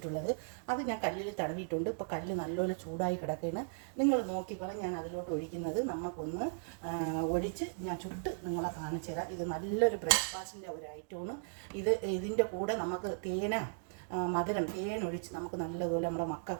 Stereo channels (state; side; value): silent; left; digital silence